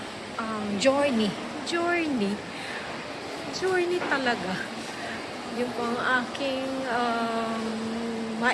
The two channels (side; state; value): both; identical; correlation 1.00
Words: journey. Journey talaga. Yun po ang aking